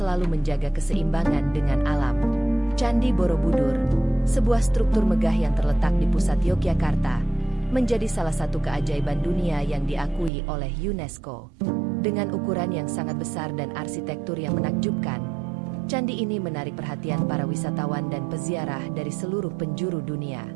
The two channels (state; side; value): drops out; left; at 10.3 s